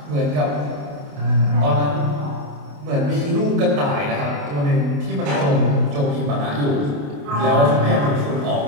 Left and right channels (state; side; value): late; left; 28 ms